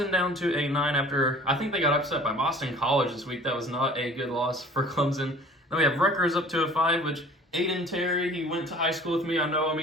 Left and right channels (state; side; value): normal; both; correlation 0.48